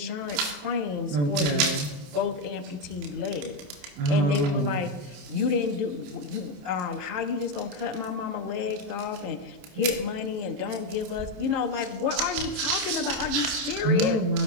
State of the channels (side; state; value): left; late; 28 ms